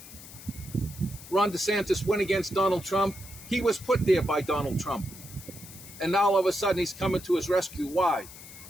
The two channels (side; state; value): left; noise; hiss, 16 dB below the sound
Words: Ron DeSantis went against Donald Trump. He was put there by Donald Trump. And now all of a sudden he's coming to his rescue. Why?